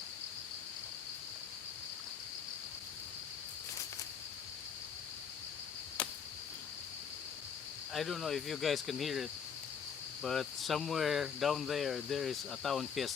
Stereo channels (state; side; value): quieter; right; 7.0 dB